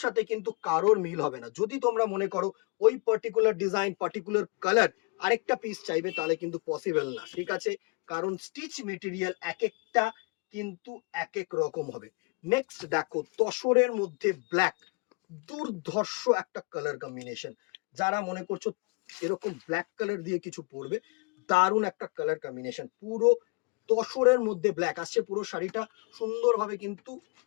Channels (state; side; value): quieter; right; 30.8 dB